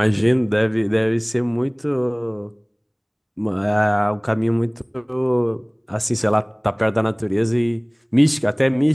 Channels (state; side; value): identical; both; correlation 1.00